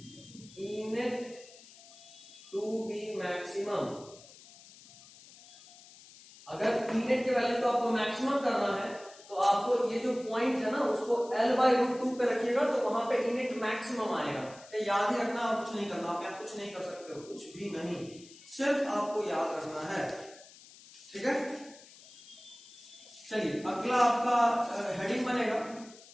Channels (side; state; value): left; noise; hiss, 21 dB below the sound